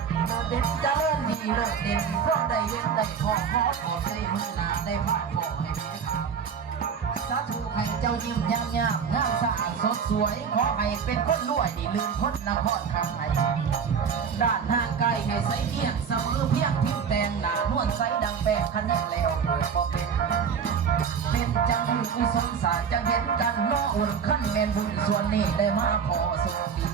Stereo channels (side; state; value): left; quieter; 6.7 dB